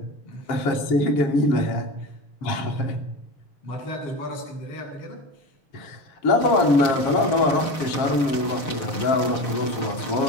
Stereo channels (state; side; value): late; right; 6.6 ms